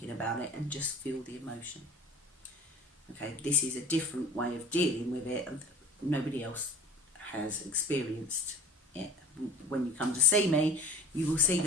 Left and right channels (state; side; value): normal; both; correlation 0.42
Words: about it and just feel the emotion. Okay, this is a different way of dealing with it, and nobody else has experienced it. When you come to see me, you will see